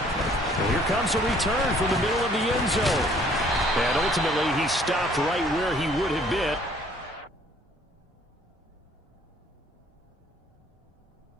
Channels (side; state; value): both; normal; correlation 0.59